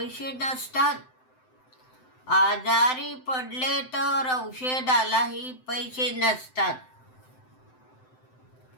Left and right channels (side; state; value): right; late; 7.8 ms